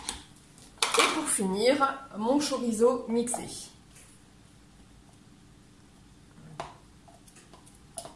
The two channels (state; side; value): identical; both; correlation 1.00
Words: pour finir, mon chorizo mixé.